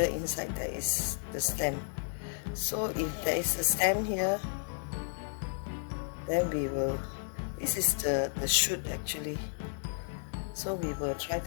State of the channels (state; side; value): silent; right; digital silence